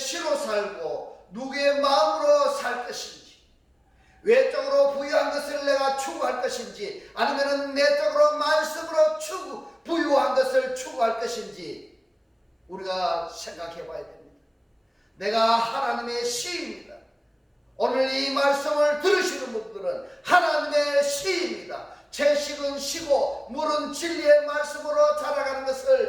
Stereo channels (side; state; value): both; identical; correlation 1.00